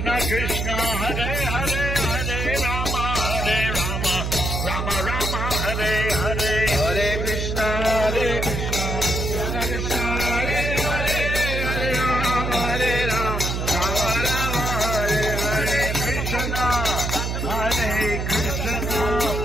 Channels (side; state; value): right; noise; hum, 1 dB below the sound